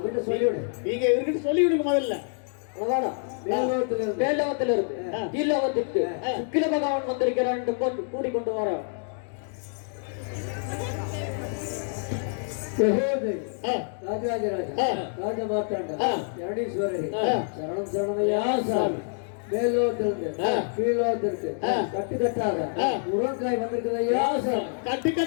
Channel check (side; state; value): right; silent; 60 dB below the other